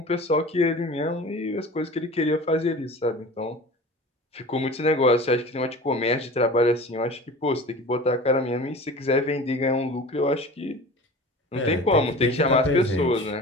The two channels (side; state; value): both; normal; correlation 0.38